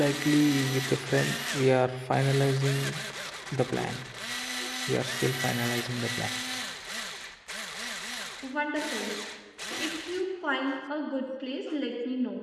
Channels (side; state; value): both; identical; correlation 1.00